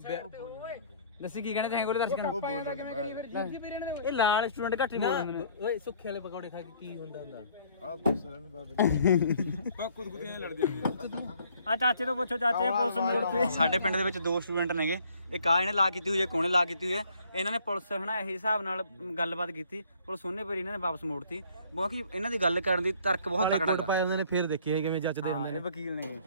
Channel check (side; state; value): both; inverted; correlation -0.59